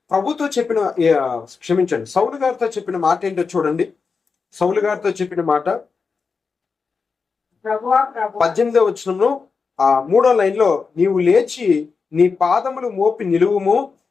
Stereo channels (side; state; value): right; quieter; 5.0 dB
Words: ప్రభుతో చెప్పిన, క్షమించండి, సౌలు గారితో చెప్పిన మాట ఏంటో చూడండి. సౌలు గారితో చెప్పిన మాట 18వ వచనంలో 3వ లైన్లో, నీవు లేచి నీ పాదములు మోపి నిలువుము,